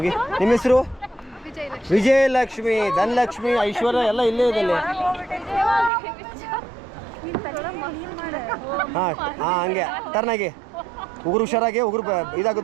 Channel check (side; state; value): left; drops out; at 5.9 s